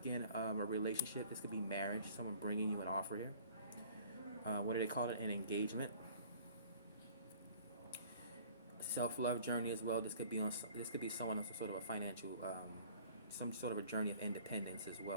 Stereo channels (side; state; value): both; inverted; correlation -0.51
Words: a relationship. This could be marriage, someone bringing you an offer here. What do they call it? An engagement. Self-love journey as well. This could be someone on some sort of a financial, some sort of a journey of independence as